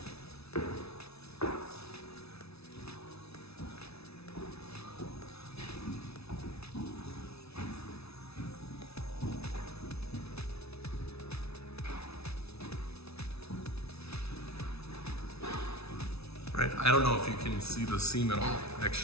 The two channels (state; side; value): late; right; 0.79 ms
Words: Right, I don't know if you can see the seam at all,